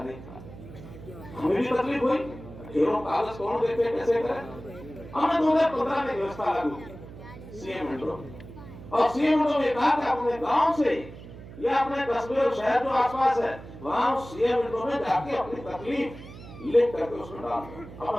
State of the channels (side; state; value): right; noise; hum, 15 dB below the sound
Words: नहीं था। हमें भी तकलीफ हुई, ढेरों कागज कौन देखे, कैसे करे। हमने 2015 में व्यवस्था लागू की सीएम विंडो, और सीएम विंडो में कहा कि अपने गांव से या अपने कस्बे और शहर जो आसपास है वहां सीएम विंडो में जाके अपनी तकलीफ लिख करके उसमें डाल दो,